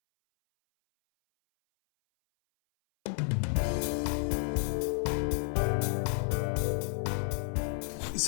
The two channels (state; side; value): silent; right; 57 dB below the other